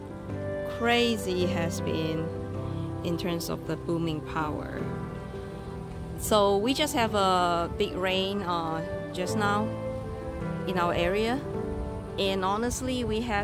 crazy it has been in terms of the blooming power. So we just have a big rain just now in our area, and honestly we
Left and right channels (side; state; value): both; identical; correlation 1.00